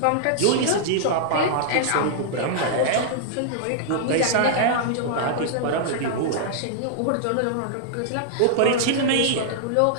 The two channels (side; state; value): both; different; correlation -0.01